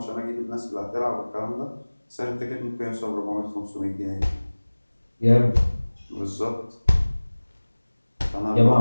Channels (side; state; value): both; inverted; correlation -1.00